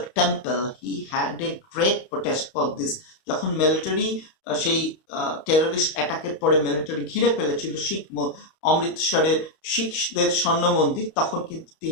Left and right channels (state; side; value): late; right; 32 ms